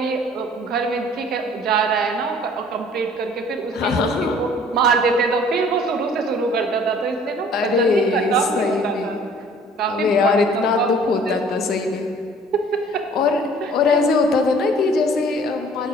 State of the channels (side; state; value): both; normal; correlation 0.53